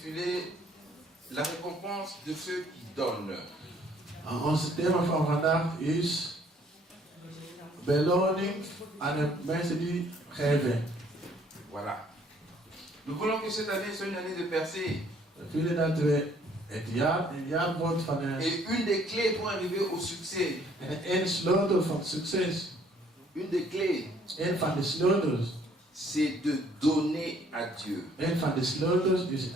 La récompense de ceux qui donnent. Ons thema van vandaag is beloning aan de mensen die geven. Voilà. Nous voulons que cette année soit une année de percée. We willen dat we het jaar een jaar wordt van Et une des clés pour arriver au succès. En een sleutel van succes. Une des clés. Een van de sleutels. C'est de donner à Dieu. Een van de sleutels is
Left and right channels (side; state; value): both; normal; correlation 0.62